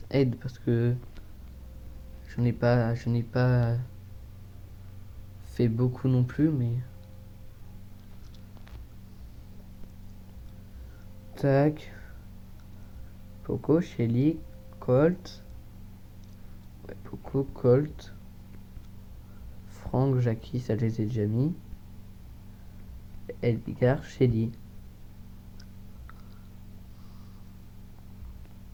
aide parce que je n'ai pas fait beaucoup non plus, mais... Tac. Poco, Shelly, Colt. Ouais, Poco, Colt. Franck, Jackie, ça je les ai déjà mis. Edgar, Shelly.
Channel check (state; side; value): identical; both; correlation 1.00